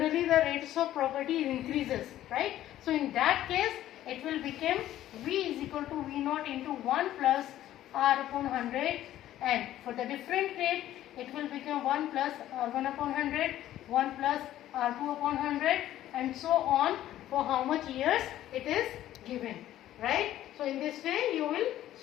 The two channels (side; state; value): right; quieter; 13.2 dB